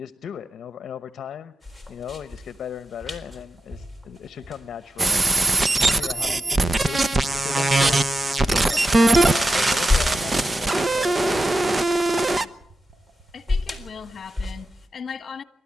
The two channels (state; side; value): normal; both; correlation 0.90